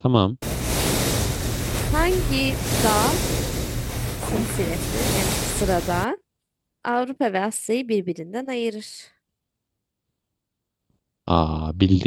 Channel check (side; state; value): both; identical; correlation 1.00